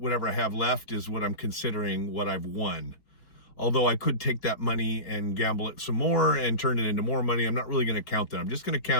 I have left is what I'm considering what I've won. Although I could take that money and gamble it some more and turn it into more money. I'm not really going to count that. I'm just going to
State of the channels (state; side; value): late; right; 4.7 ms